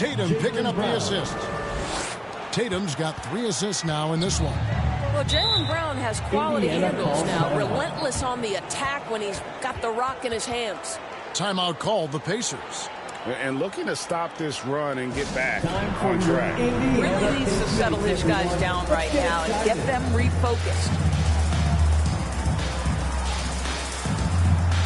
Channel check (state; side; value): identical; both; correlation 1.00